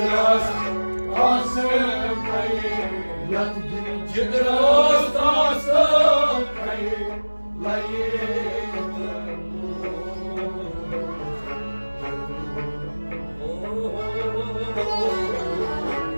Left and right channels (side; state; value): both; inverted; correlation -1.00